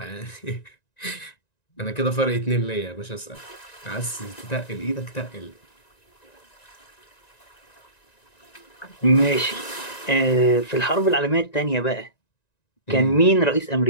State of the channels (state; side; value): late; right; 1.9 ms